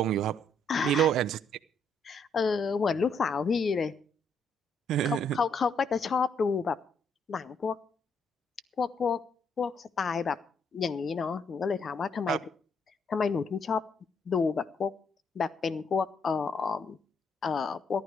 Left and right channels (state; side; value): normal; both; correlation 0.72